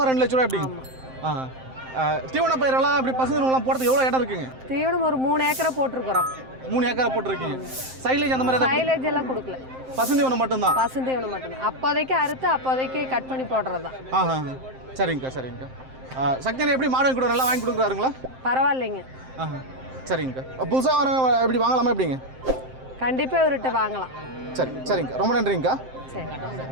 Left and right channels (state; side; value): late; left; 7.7 ms